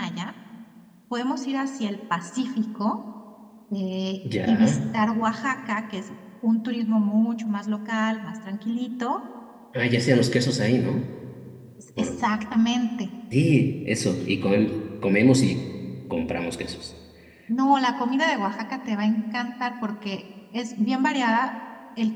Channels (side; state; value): both; identical; correlation 1.00